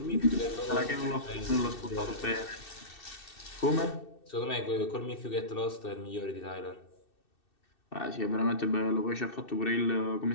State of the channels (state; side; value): late; right; 2.6 ms